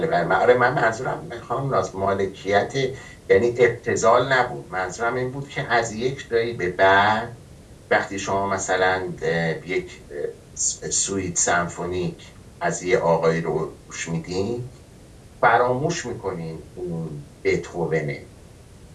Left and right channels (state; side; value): identical; both; correlation 1.00